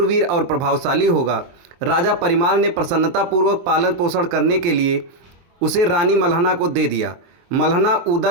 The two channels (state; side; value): late; left; 23 ms